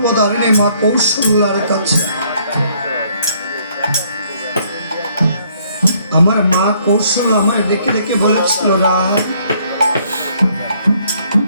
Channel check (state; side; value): inverted; both; correlation -0.65